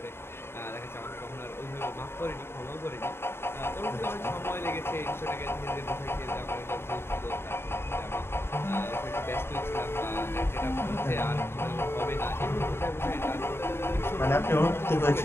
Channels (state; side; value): late; right; 0.11 ms